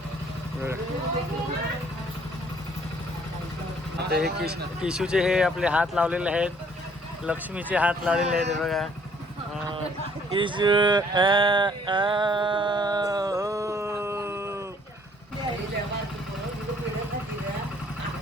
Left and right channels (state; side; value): normal; both; correlation 0.61